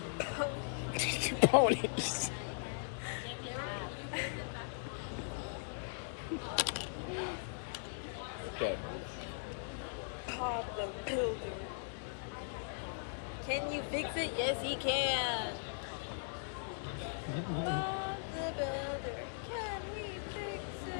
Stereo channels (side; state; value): right; silent; digital silence